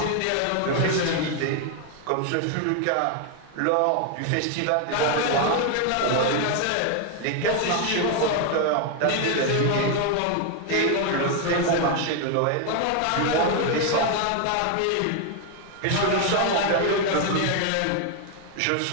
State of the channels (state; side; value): different; both; correlation 0.01